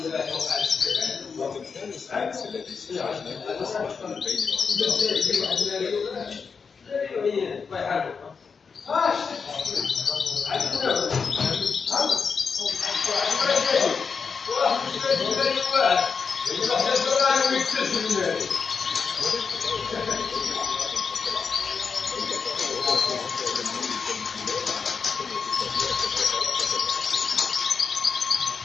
وتمثال السفنكس الذي استخرجناه أصبح من بين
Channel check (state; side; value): quieter; right; 5.6 dB